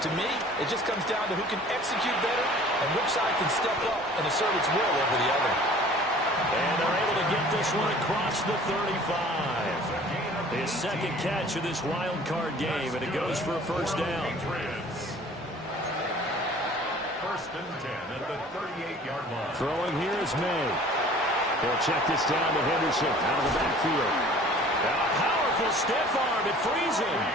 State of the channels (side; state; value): both; normal; correlation 0.49